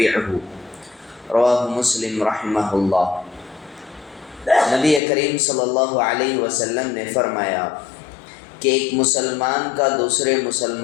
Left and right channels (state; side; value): drops out; right; at 5.0 s